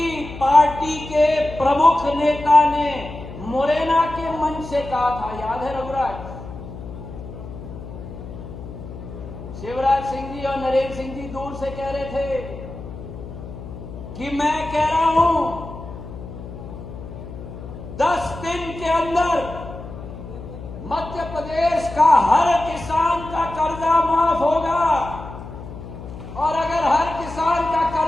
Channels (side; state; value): left; noise; hum, 12 dB below the sound